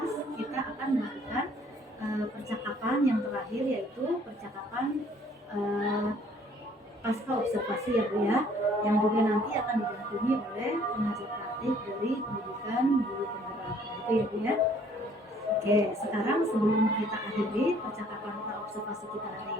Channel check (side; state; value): both; normal; correlation 0.59